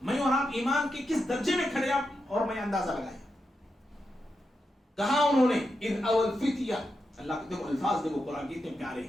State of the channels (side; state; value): both; normal; correlation 0.87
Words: میں اور آپ ایمان کے کس درجے میں کھڑے آپ اور میں اندازہ لگائیں. کہا انہوں نے اذ اول فتیہ, اللہ کے دیکھو الفاظ دیکھو قرآن کتنے پیارے